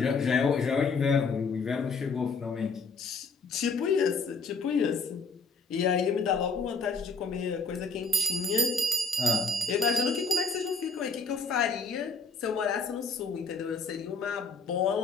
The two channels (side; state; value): right; quieter; 4.2 dB